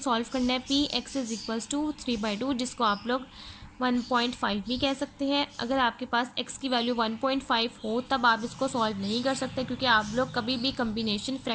करना है P x is equals to 3/2 जिसको आप लोग 1.5 भी कह सकते हैं। अगर आपके पास x की वैल्यू 1.5 हो तब आप इसको सॉल्व नहीं कर सकते क्योंकि आप लोग कभी भी कम्बिनेशन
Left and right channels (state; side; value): identical; both; correlation 1.00